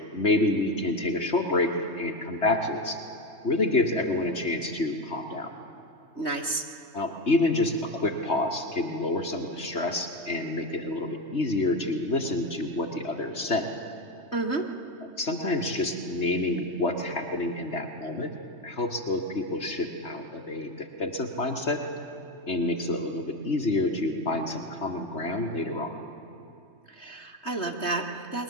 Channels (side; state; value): right; late; 3.2 ms